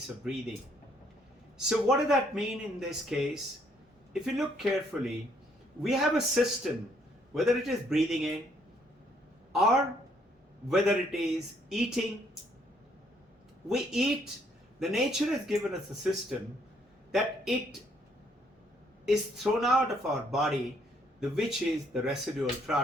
of breathing. So what does that mean in this case? If you look carefully, we have a system, whether it is breathing in or whether it is eating. We eat. The nature has given us a system that it is thrown out of our body, which is the residual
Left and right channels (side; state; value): both; normal; correlation 0.68